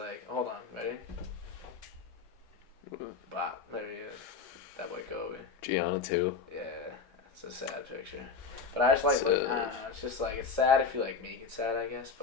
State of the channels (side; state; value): right; quieter; 5.1 dB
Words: hold on, ready? Bop, there he is. That boy Kobe. Gianna, too. Yeah, it's a sad picture. But I just, like, look, I don't know. It's just, like, it's sad if you, like, make it sad, I guess,